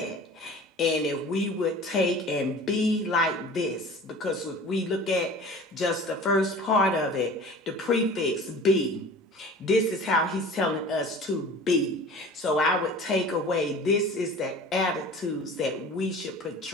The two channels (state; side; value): normal; both; correlation 0.41